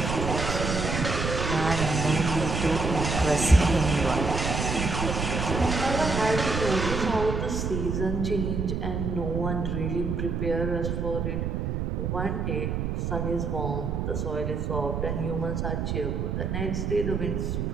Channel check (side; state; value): right; noise; rumble, 1 dB below the sound